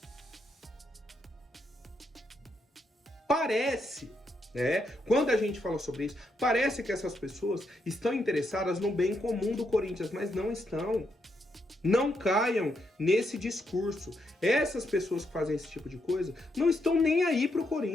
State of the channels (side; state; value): both; normal; correlation 0.79